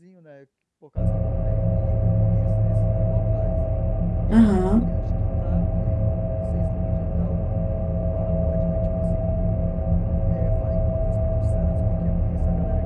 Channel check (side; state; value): both; identical; correlation 1.00